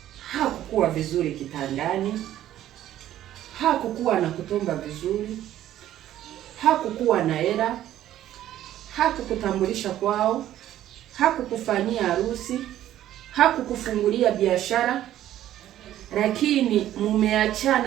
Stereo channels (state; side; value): quieter; left; 12.6 dB